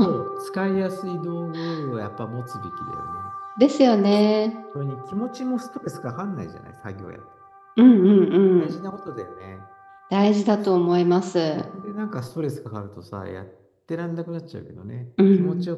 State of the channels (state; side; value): identical; both; correlation 1.00